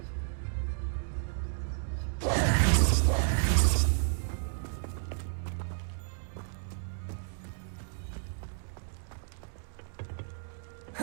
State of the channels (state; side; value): silent; left; digital silence